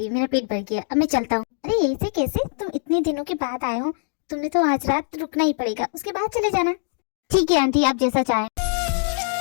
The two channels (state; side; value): silent; right; digital silence